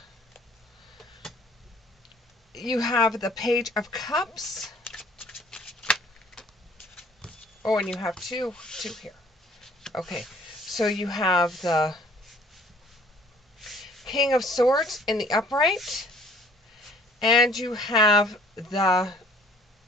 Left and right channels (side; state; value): both; normal; correlation 0.56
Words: Page of Cups. Oh, and you have two here. Okay, so you have the King of Swords in the upright, and you have the